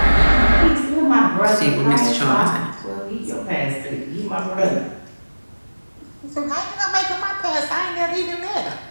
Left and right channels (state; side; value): inverted; both; correlation -1.00